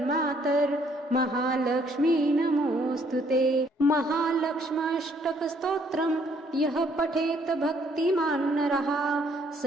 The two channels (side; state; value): both; normal; correlation 0.66